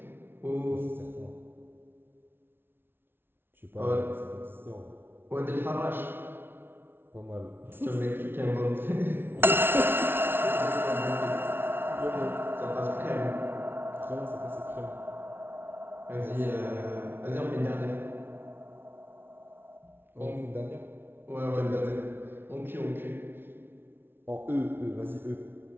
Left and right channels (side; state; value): left; late; 0.11 ms